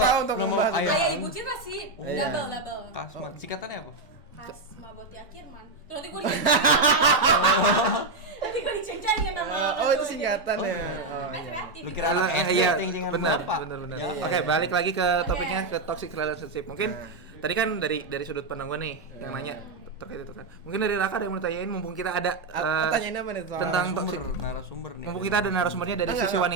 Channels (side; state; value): left; quieter; 3.4 dB